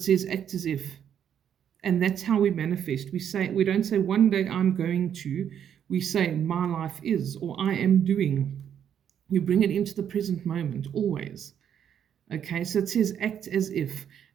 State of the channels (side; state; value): left; quieter; 9.0 dB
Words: says act as if. And that's how we manifest. We don't say one day I'm going to. We say, my life is, or I am doing. You bring it into the present moment, always. Okay, so it says act as if,